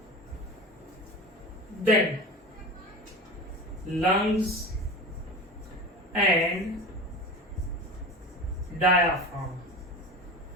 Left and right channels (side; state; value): both; normal; correlation 0.30